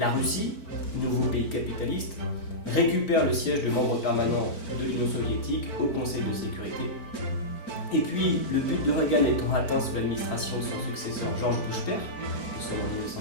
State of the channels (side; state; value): right; late; 4.4 ms